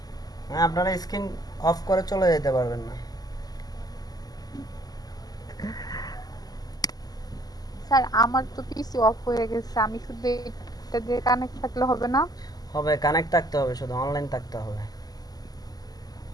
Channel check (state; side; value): late; right; 0.18 ms